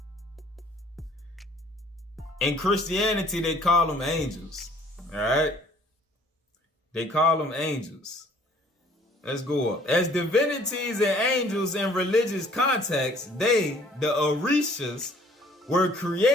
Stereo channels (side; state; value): both; normal; correlation 0.56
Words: in Christianity, they call them angels. All right? They call them angels. Let's go up. As divinities and angels in religious context, they, the Orishas, were